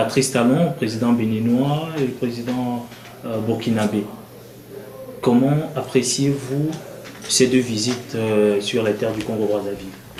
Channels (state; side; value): identical; both; correlation 1.00